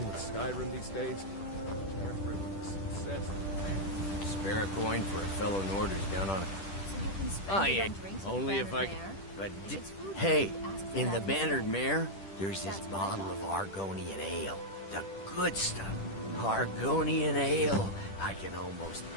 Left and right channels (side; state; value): right; late; 10 ms